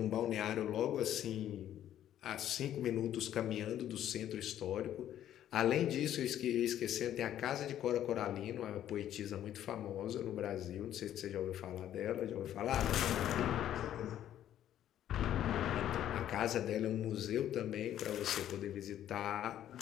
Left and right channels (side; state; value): right; quieter; 11.4 dB